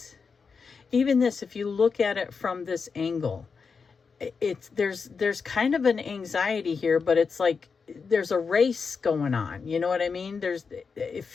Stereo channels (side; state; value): right; quieter; 5.3 dB